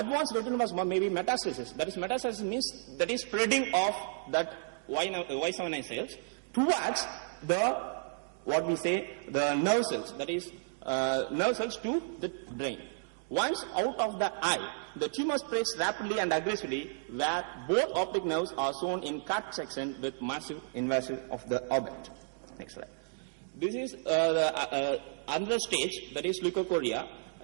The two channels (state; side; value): silent; left; digital silence